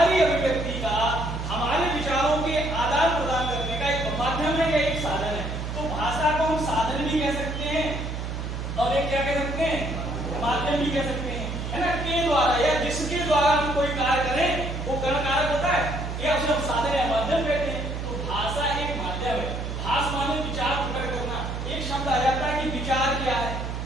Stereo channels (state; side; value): noise; right; hum, 5 dB below the sound